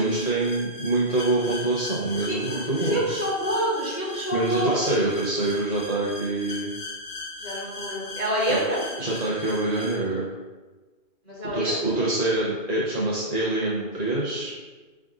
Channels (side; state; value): right; late; 2.4 ms